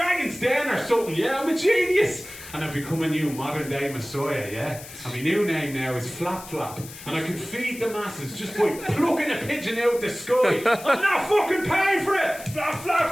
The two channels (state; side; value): noise; left; hiss, 15 dB below the sound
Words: Den or something. Yeah, I'm a genius. And I've become a new modern day messiah, yeah? And my new name now is Flap Flap. And I can feed the masses just by plucking a pigeon out the sky. I'm not fucking paying for it. Flap